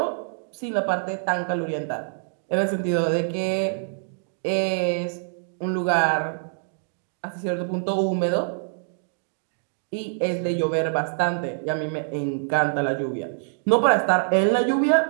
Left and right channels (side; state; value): left; silent; digital silence